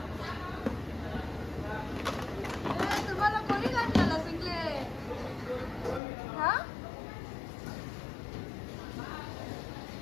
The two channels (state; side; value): drops out; right; at 6.0 s